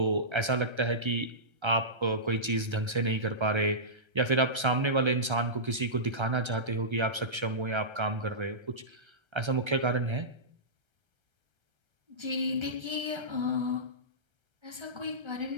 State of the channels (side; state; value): left; late; 1.3 ms